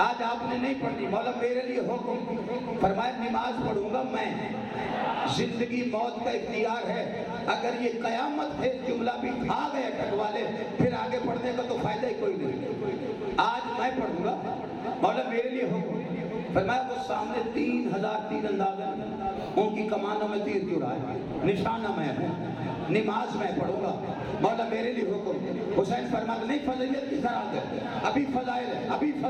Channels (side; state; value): both; identical; correlation 1.00